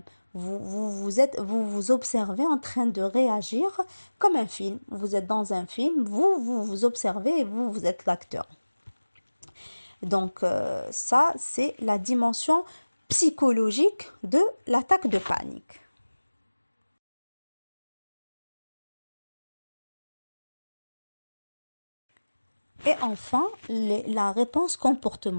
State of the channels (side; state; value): both; inverted; correlation -1.00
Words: Vous observez en train de réagir comme un film. Vous êtes dans un film, vous observez et vous êtes l'acteur. Donc ça, c'est la dimension psychologique de l'attaque de panique. Et enfin, la réponse